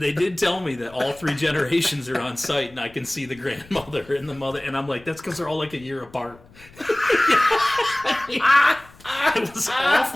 tell me that all 3 generations are on site, and I can see the grandmother and the mother, and I'm like, that's because they're all like a year apart. It was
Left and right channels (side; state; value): left; noise; rumble, 24 dB below the sound